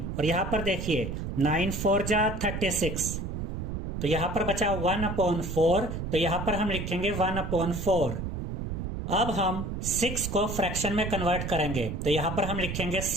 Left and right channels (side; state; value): right; noise; rumble, 4 dB below the sound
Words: और यहाँ पर देखिए 9 4 जा 36, तो यहाँ पर बचा 1/4, तो यहाँ पर हम लिखेंगे 1/4। अब हम 6 को फ्रैक्शन में कन्वर्ट करेंगे, तो यहाँ पर हम लिखेंगे